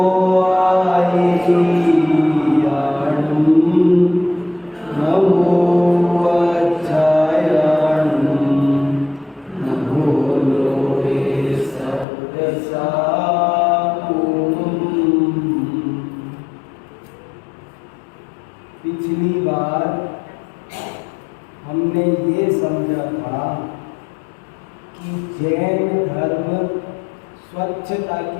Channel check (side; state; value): right; drops out; at 12.1 s